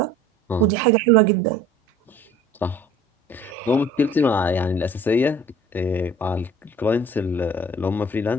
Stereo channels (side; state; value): both; normal; correlation 0.48